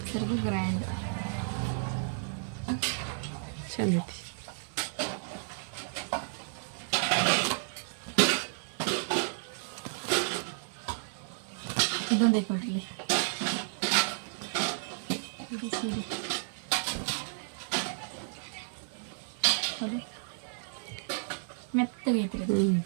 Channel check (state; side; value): silent; left; digital silence